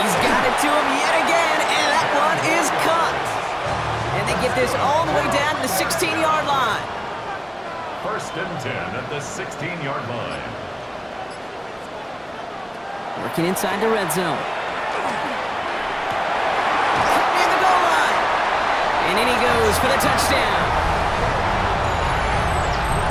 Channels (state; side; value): identical; both; correlation 1.00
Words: got it to him yet again, and that one is caught. And they get this all the way down to the 16-yard line. 1st and 10 at the 16-yard line. Working inside the red zone. Caught near the goal line. And in he goes for the touchdown.